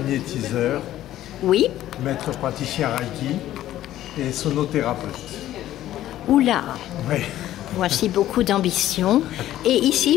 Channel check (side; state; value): right; quieter; 13.4 dB